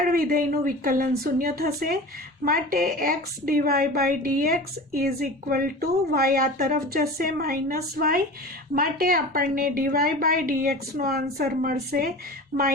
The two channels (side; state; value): both; normal; correlation 0.35